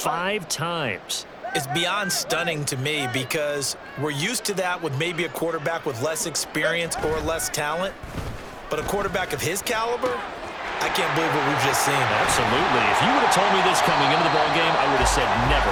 times? It's beyond stunning to me because we're used to that with maybe a quarterback with less experience or less talent. But a quarterback of his caliber, I can't believe what we've just seen. Absolutely. If you would have told me this coming into the ballgame, I would have said never,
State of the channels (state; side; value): identical; both; correlation 1.00